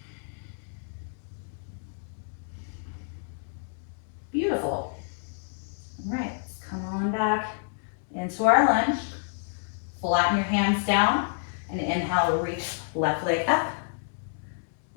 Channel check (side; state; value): right; silent; digital silence